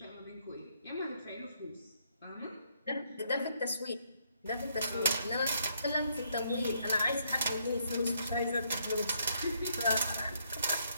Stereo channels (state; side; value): inverted; both; correlation -0.72